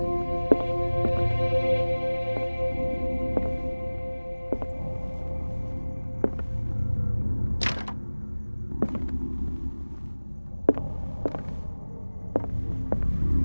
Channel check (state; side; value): inverted; both; correlation -1.00